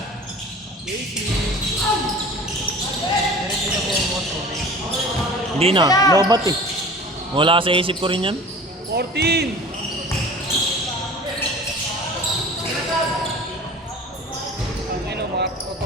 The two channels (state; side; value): normal; both; correlation 0.42